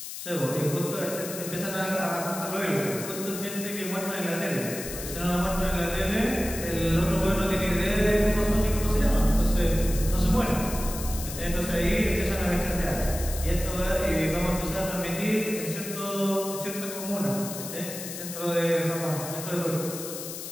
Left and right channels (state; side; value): noise; left; hiss, 9 dB below the sound